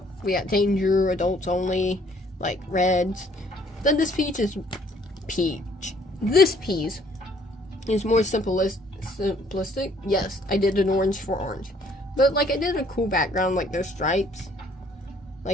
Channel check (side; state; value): both; normal; correlation 0.61